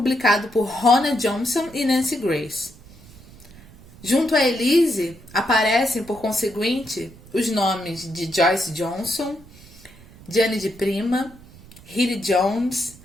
por Rona Johnson e Nancy Grace. Junto a Elise, aparecem, por conseguinte, os nomes de Joyce Johnson, Gianni de Prima, Hilly Jones,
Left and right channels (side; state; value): right; noise; rumble, 22 dB below the sound